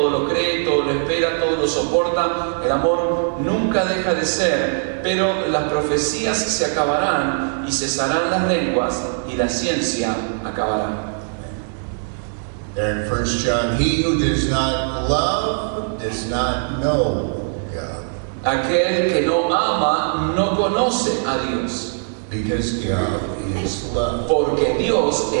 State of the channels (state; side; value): silent; left; digital silence